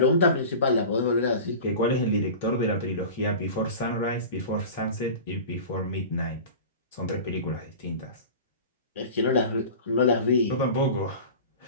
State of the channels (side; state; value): both; inverted; correlation -0.35